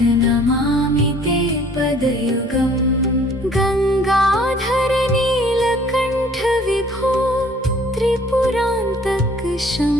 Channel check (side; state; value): both; normal; correlation 0.55